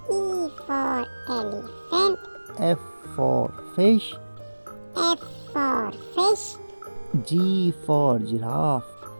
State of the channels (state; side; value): inverted; both; correlation -1.00